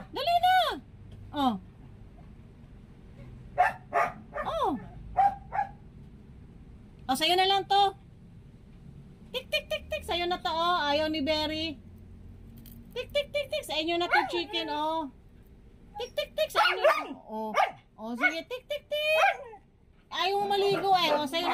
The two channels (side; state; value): both; identical; correlation 1.00